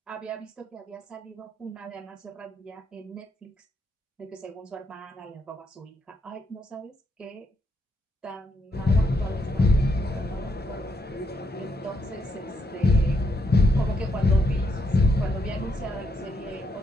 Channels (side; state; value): both; normal; correlation 0.78